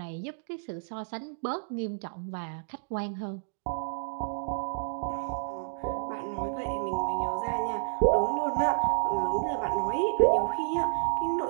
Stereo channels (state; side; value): silent; left; digital silence